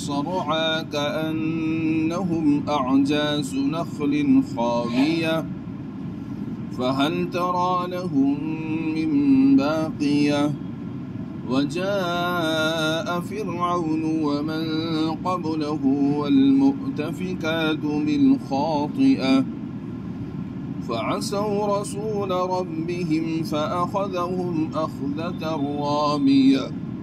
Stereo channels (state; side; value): identical; both; correlation 1.00